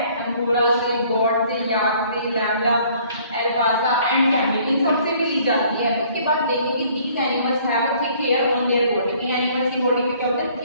अंगोरा से, गॉड से, याक से, लैम्बडा, अल्पाका एंड कैमल, इन सबसे भी ली जाती है। उसके बाद देखेंगे these animals have a thick hair on their body. इन एनिमल्स की बॉडी में क्या होता है?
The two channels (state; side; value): inverted; both; correlation -0.58